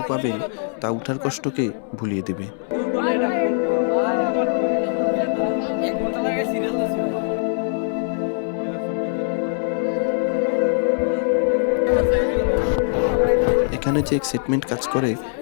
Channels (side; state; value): right; silent; 64 dB below the other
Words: পাবেন তা উঠার কষ্টকে ভুলিয়ে দেবে। এখানে যে এক্সাইটমেন্ট কাজ করে